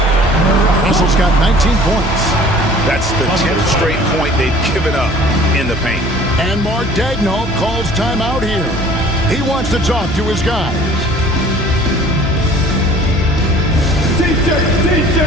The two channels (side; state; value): both; normal; correlation 0.50